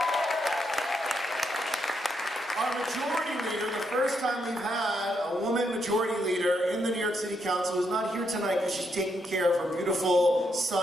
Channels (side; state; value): both; normal; correlation 0.79